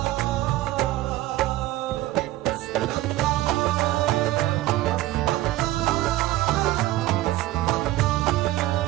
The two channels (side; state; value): left; quieter; 16.2 dB